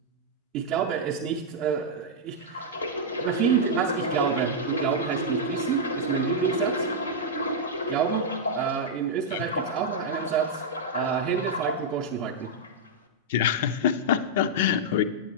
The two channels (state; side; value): normal; both; correlation -0.06